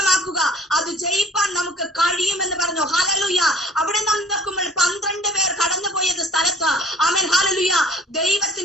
അത് ജയിപ്പാൻ നമുക്ക് കഴിയുമെന്ന് പറഞ്ഞു. ഹല്ലേലൂയ അവിടെ നാം നോക്കുമ്പോൾ 12 പേർ കടന്നുപോയത് സ്ഥലത്ത് ഹല്ലേലൂയ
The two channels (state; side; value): normal; both; correlation 0.54